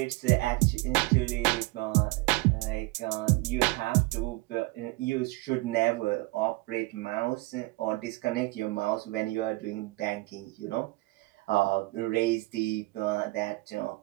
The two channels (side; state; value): left; quieter; 22.2 dB